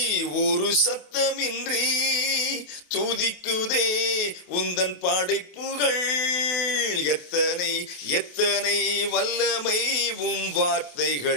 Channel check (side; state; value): right; late; 28 ms